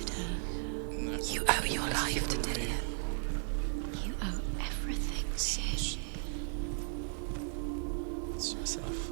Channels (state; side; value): silent; left; 54 dB below the other